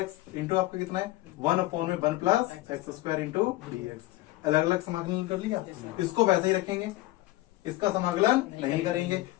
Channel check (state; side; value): quieter; right; 18.3 dB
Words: x इंटू आपका कितना है 1/1 plus x square into dx। अलग अलग समाकलन कर लिया, इसको वैसे ही रखेंगे, इसका समाकलन नहीं करेंगे,